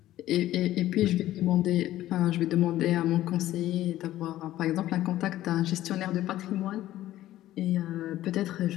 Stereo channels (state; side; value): quieter; right; 14.2 dB